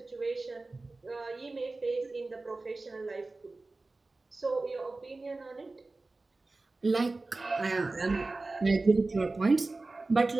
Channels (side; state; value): left; quieter; 3.3 dB